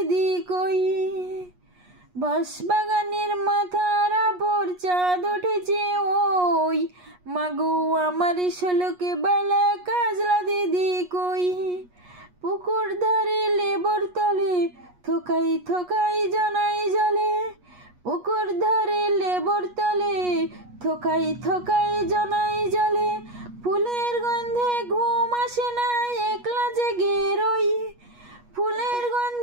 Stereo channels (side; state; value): left; late; 8.3 ms